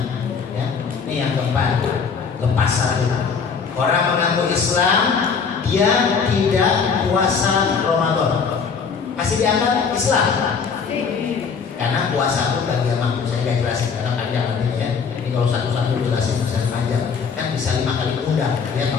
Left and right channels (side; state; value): right; quieter; 5.8 dB